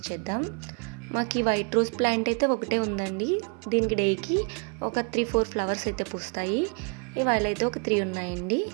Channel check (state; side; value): quieter; left; 37.4 dB